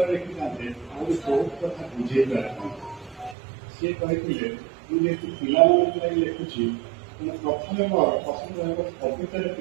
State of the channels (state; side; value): drops out; left; at 3.4 s